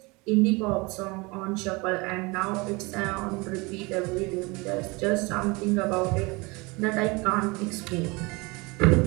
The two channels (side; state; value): left; quieter; 25.8 dB